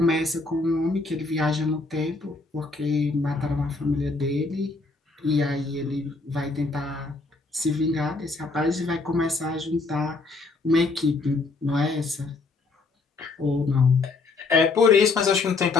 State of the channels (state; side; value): quieter; right; 3.7 dB